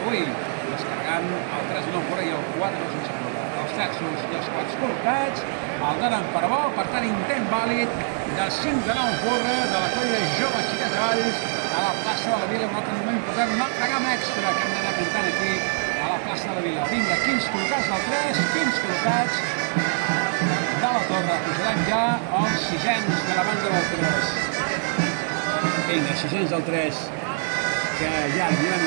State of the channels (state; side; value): silent; left; 62 dB below the other